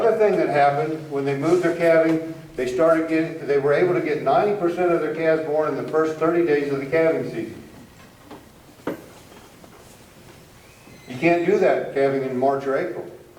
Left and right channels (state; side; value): identical; both; correlation 1.00